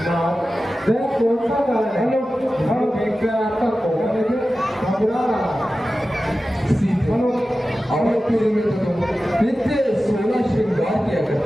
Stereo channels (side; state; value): both; normal; correlation 0.94